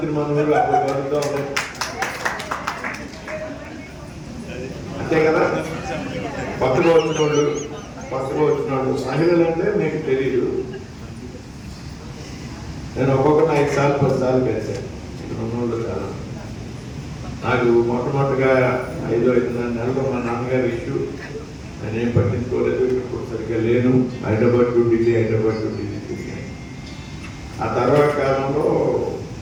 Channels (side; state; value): both; identical; correlation 1.00